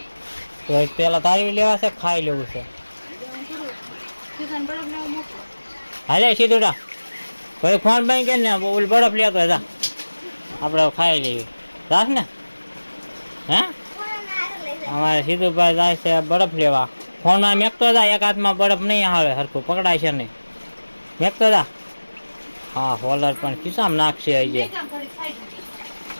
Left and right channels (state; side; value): inverted; both; correlation -1.00